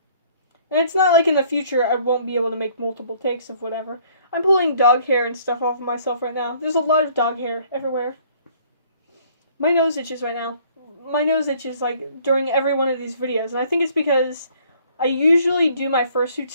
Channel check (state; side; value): inverted; both; correlation -0.59